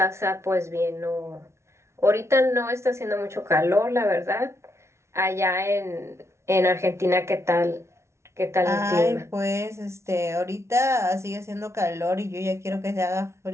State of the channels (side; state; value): left; late; 0.13 ms